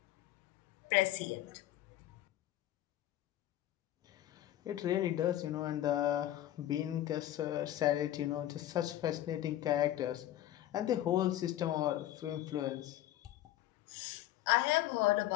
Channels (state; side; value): quieter; right; 13.5 dB